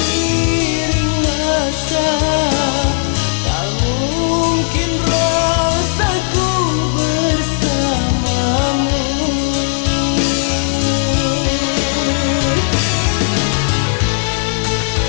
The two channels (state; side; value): silent; right; digital silence